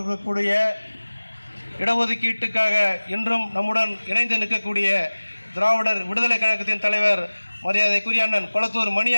இடஒதுக்கீட்டுக்காக இன்றும் நம்முடன் இணைந்து நிற்கக்கூடிய திராவிடர் விடுதலை கழகத்தின் தலைவர் மரியாதைக்குரிய அண்ணன் கொளத்தூர் மணி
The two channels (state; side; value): inverted; both; correlation -1.00